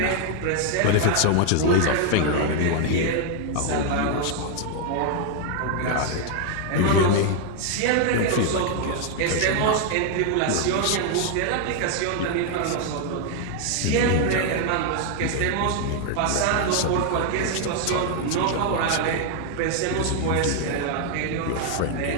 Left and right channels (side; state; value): both; different; correlation 0.00